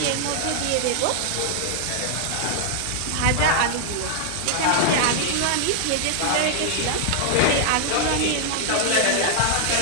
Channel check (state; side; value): different; both; correlation 0.00